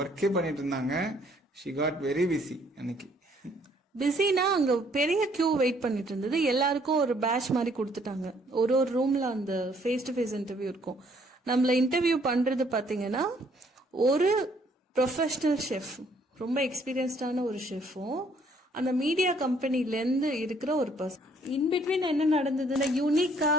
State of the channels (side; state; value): both; normal; correlation 0.64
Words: பண்ணிட்டு இருந்தாங்க. ஷி காட் வெரி பிஸி அன்னைக்கு. பிஸினா அங்க பெரிய கியூ வெயிட் பண்ணிட்டு இருந்தது. எல்லாருக்கும் ஒரு பேட்ச் மாதிரி கொடுத்துட்டாங்க. ஒரு ஒரு ரூம்ல அந்த ஃபேஸ் டு ஃபேஸ் இன்டர்வியூ இருக்கும். நம்மள இன்டர்வியூ பண்றது பாத்தீங்கன்னா ஒரு ப்ரொஃபஷனல் ஷெஃப், ரொம்ப எக்ஸ்பீரியன்ஸ்டான ஒரு ஷெஃபும் அந்த மீடியா கம்பெனிலேருந்து இருக்கிற ஒரு பர்சன். இன்பிட்வீன் என்ன நடந்ததுன்னா, யூனிக்கா